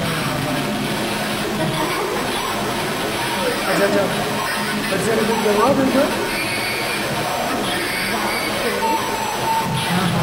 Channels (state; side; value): identical; both; correlation 1.00